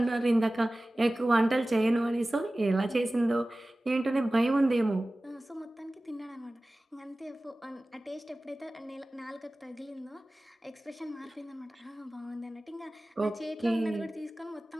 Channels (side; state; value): both; normal; correlation 0.97